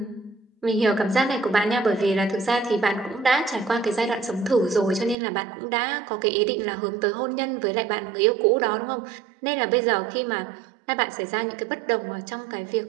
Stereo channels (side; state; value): left; drops out; at 5.2 s